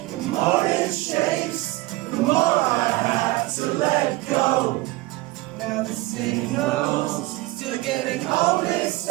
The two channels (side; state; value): left; quieter; 20.0 dB